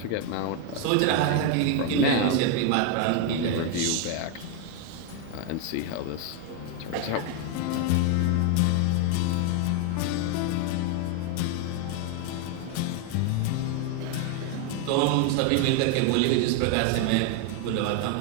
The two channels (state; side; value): different; both; correlation 0.01